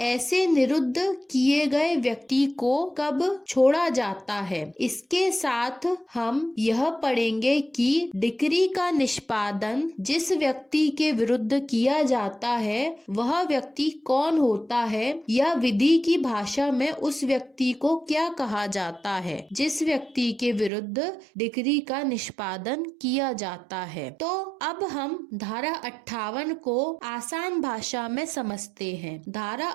ऐसे निरुद्ध किए गए व्यक्ति को कब छोड़ा जाता है। इसके साथ हम यह पढ़ेंगे कि डिक्री का निष्पादन जिस व्यक्ति के विरुद्ध किया जाता है वह व्यक्ति कौन होता है, या विधि की भाषा में उस व्यक्ति को क्या कहा जाता है जिस व्यक्ति के विरुद्ध डिक्री का निष्पादन किया जाता है। तो अब हम धारा 58 को आसान भाषा में समझते हैं। धारा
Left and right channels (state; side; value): drops out; left; at 20.7 s